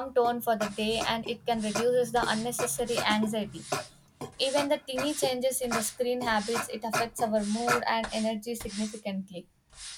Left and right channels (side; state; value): both; identical; correlation 1.00